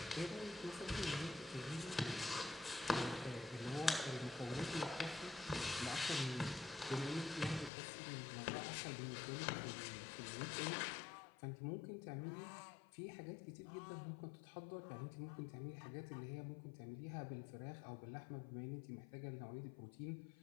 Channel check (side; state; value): right; drops out; at 7.7 s